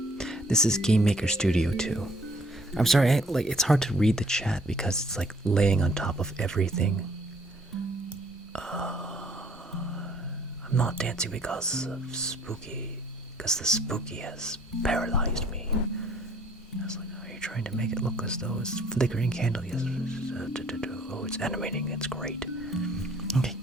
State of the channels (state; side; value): normal; both; correlation 0.60